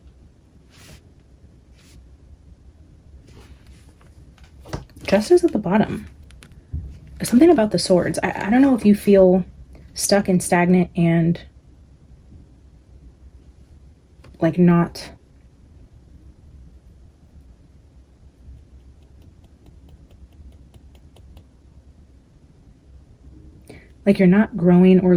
Justice at the bottom. Something about the swords. I don't know if you feel stuck and stagnant and like not like you're not growing or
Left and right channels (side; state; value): both; identical; correlation 1.00